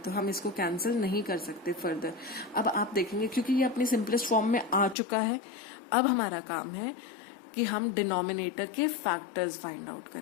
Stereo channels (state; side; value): drops out; right; at 5.0 s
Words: हम इसको कैंसिल नहीं कर सकते फर्दर। अब आप देखेंगे क्योंकि ये अपनी सिंपलेस्ट फॉर्म में आ चुका है, अब हमारा काम है कि हम डिनोमिनेटर के फैक्टर्स फाइंड आउट